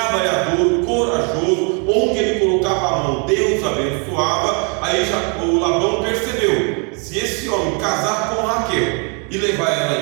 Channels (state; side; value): quieter; left; 35.8 dB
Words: corajoso, onde ele colocava a mão, Deus abençoava. Aí o Labão percebeu: se esse homem casar com Raquel e levar